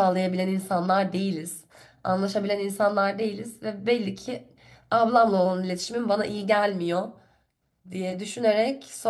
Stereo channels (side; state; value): both; identical; correlation 1.00